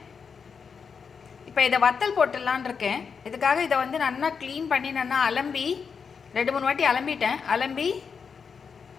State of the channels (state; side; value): quieter; right; 6.0 dB